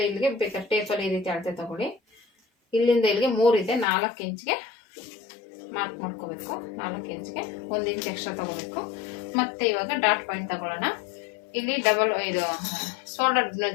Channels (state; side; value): drops out; right; at 3.9 s